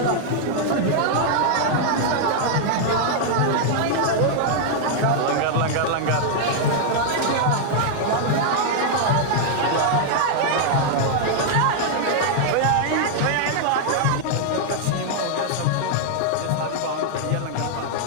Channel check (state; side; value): different; both; correlation -0.01